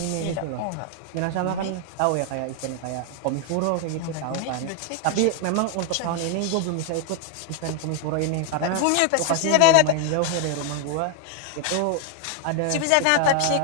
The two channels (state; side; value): different; both; correlation 0.00